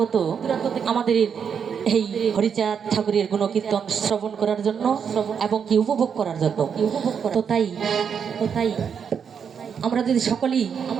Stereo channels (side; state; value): left; quieter; 7.1 dB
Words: আমাদের এই হরিচাঁদ ঠাকুরের গুণকীর্তন শ্রবণ করার জন্য এবং কি উপভোগ করার জন্য। তো তাই আমরা যদি সকলেই